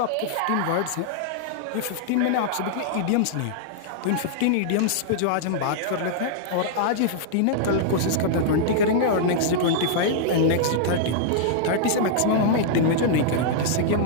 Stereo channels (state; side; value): different; both; correlation -0.01